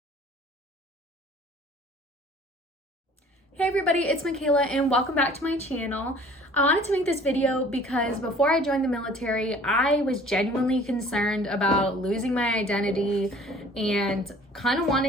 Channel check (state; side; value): normal; both; correlation 0.50